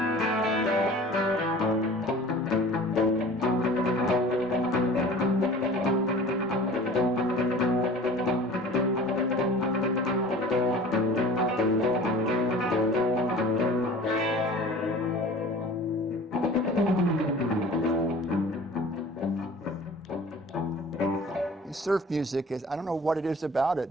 Surf music is, I don't know what it is about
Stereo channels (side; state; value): both; normal; correlation 0.43